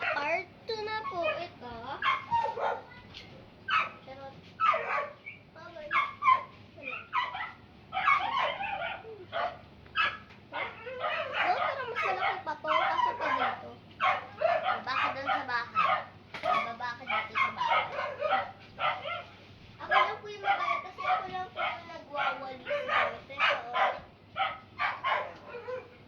part 2 na po ito. Charot. Bye-bye. No, pero mas malaki pa to. Kaso pa dito. Baba ka doon sa bahay. Baba ka dito sa bahay. Ako lang po yung mabaya kasi ako lang po yung nagwawalis dito.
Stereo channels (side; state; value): both; identical; correlation 1.00